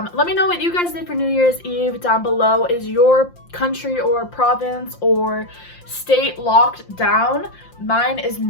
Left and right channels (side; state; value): right; late; 5.7 ms